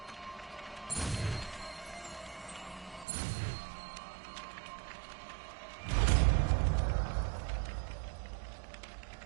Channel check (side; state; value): left; drops out; at 3.1 s